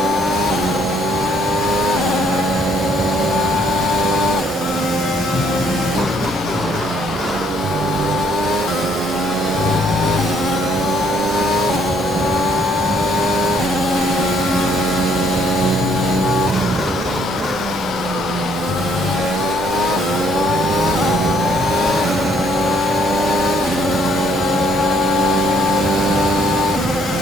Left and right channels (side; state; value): both; normal; correlation 0.65